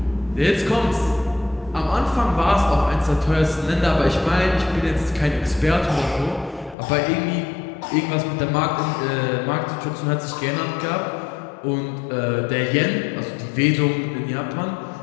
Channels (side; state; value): right; drops out; at 6.8 s